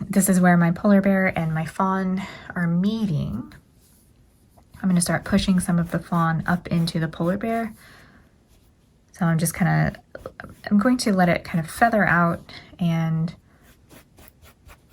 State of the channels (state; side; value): identical; both; correlation 1.00